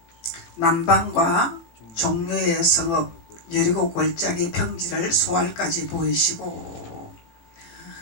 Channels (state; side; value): late; right; 18 ms